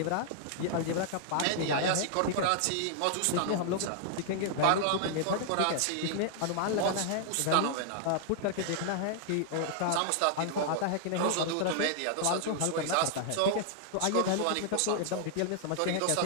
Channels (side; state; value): both; different; correlation -0.01